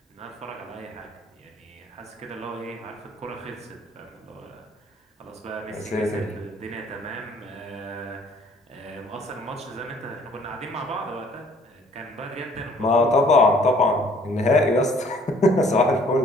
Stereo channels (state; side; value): normal; both; correlation 0.58